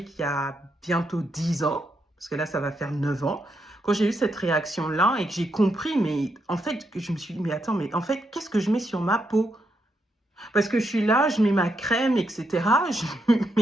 il y a bientôt 10 ans, parce que là, ça va faire 9 ans, quand j'ai eu cette réaction-là et que j'ai compris, mais en fait, que je me suis dit, mais attends, mais en fait, qu'est-ce que je mets sur ma peau? Parce que je suis là, je mets ma crème, etc. Je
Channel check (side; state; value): both; normal; correlation 0.80